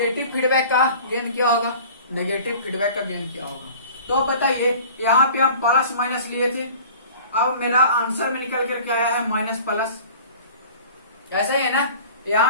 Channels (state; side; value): inverted; both; correlation -0.44